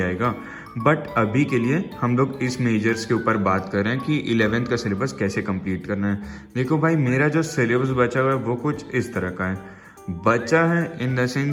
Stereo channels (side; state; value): both; identical; correlation 1.00